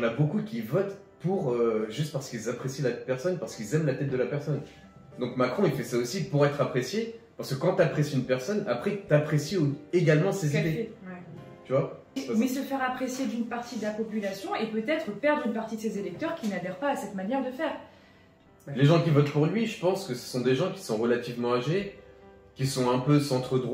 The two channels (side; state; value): both; identical; correlation 1.00